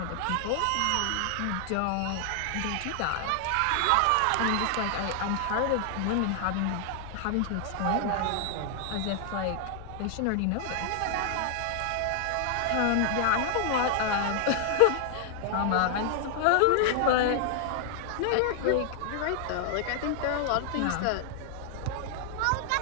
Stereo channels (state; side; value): different; both; correlation 0.00